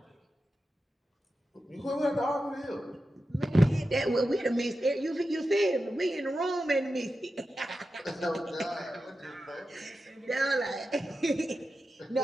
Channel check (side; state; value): both; normal; correlation 0.91